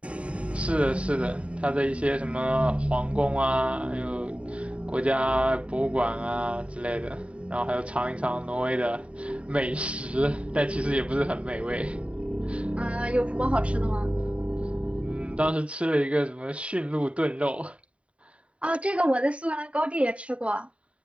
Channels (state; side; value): late; left; 0.063 ms